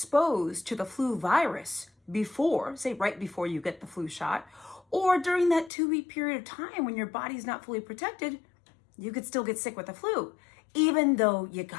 to the flu virus before, say right before you get the flu shot, or during that 2-week period of time when your body's not fully protected, you could still get sick with the flu, even though you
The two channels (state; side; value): drops out; right; at 5.7 s